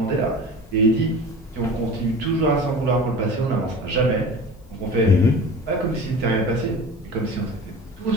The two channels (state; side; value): normal; both; correlation 0.37